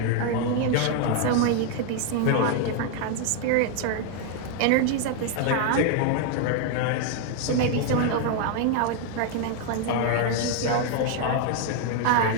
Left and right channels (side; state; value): both; different; correlation 0.00